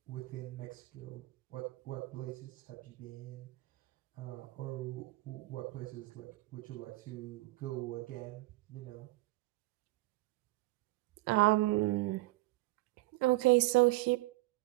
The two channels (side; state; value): left; quieter; 20.0 dB